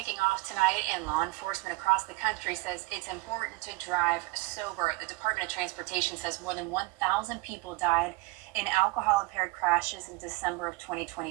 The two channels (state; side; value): quieter; left; 22.5 dB